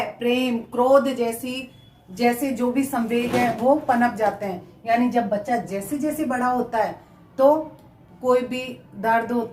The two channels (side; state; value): both; identical; correlation 1.00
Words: प्रेम, क्रोध जैसे जो भी संवेग है वो पनप जाते हैं। यानी जब बच्चा जैसे जैसे बड़ा होता है तो कोई भी दर्द